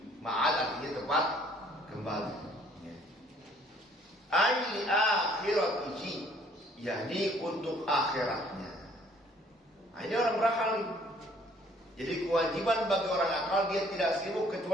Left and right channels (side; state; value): both; normal; correlation 0.60